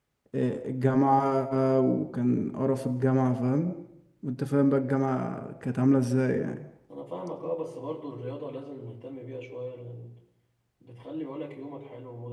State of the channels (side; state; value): both; identical; correlation 1.00